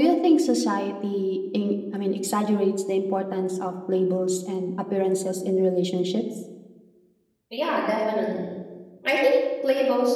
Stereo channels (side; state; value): both; identical; correlation 1.00